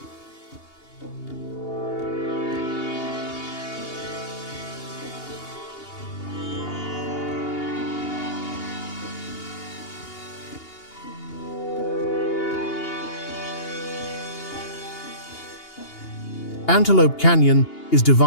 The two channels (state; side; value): late; right; 2.8 ms